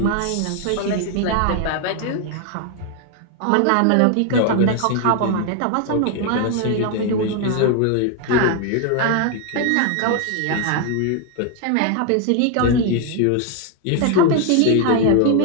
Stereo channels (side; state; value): both; different; correlation 0.01